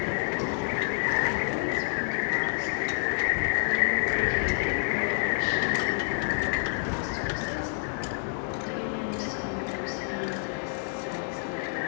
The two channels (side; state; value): right; silent; 59 dB below the other